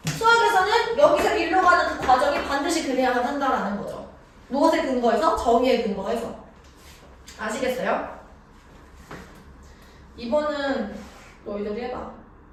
수학에서는 여기서 일로 가는 그 과정이 반드시 그래야만 한다라는 거죠. 무엇에 근거해서? 정의에 근거해서. 아시겠어요? 2번은 너희들이 해봐.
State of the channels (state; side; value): identical; both; correlation 1.00